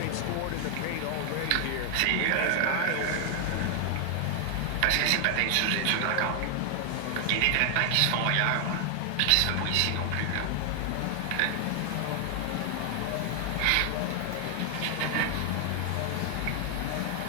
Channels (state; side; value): different; both; correlation 0.00